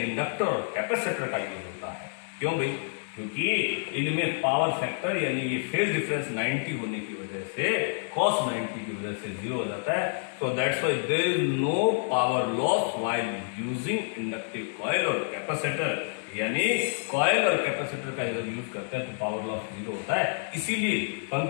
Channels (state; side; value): silent; right; 59 dB below the other